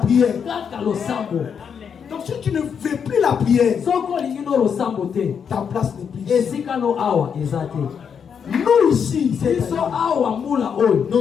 kaka losambo. Donc si tu ne veux plus la prière, soki olingi no losambo te ta place n'est plus ici. esika no awa eza te. Nous ici, c'est biso awa mbula oyo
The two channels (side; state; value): right; quieter; 7.1 dB